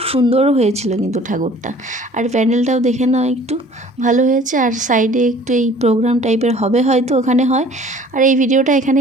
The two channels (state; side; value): normal; both; correlation 0.51